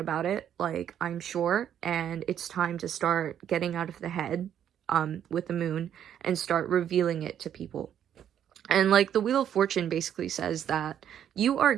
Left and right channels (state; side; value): quieter; left; 9.8 dB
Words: it, like I'm sure, and it's time to start getting out of the head with the moon and start revealing it to people. And like the Wheel of Fortune basically says that you are